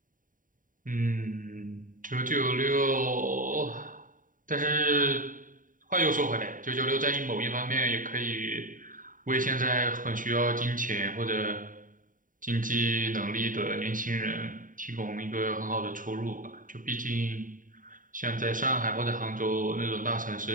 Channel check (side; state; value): left; late; 0.39 ms